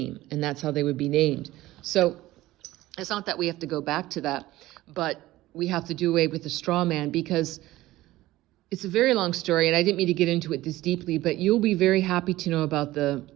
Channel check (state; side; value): quieter; left; 16.8 dB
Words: and that's how they would be named. So it's not that we have to go back to that, but we have to do away with the straw man, because it's a very long story, and I didn't mean to get into it this deeply, but you'll be very happy to know about the